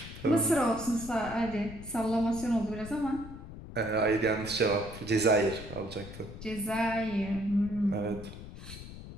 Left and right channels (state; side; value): noise; left; rumble, 13 dB below the sound